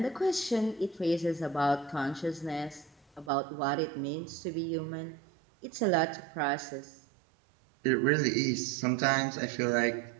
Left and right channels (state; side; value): drops out; left; at 3.3 s